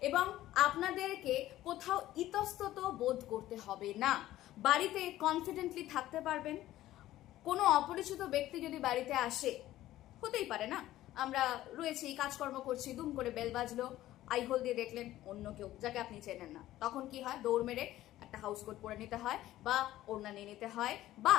এবং আপনাদেরকে কোথাও ইতস্তত বোধ করতে হবে না, বাড়িতে কনফিডেন্টলি থাকতে পারবেন। কোনো অপরিচিত ব্যক্তি যদি বাড়িতে আসে, হতেই পারে না, আমরা রয়েছি কাজকর্ম করছি, দুম করে বেল বাজলো, আই হোল দিয়ে দেখলেন অন্য কেউ যাকে আপনি চেনেন না, তখন কি হয়, দৌড় মেরে একটা হাউস কোট পরে নিতে হয় বা ওড়না নিয়ে নিতে হয়, বা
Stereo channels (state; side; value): quieter; right; 14.6 dB